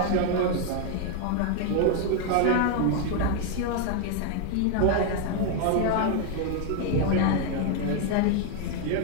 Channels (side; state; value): both; different; correlation 0.01